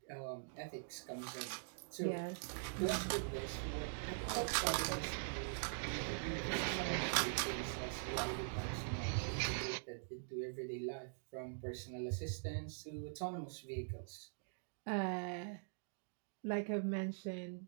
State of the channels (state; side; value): silent; left; digital silence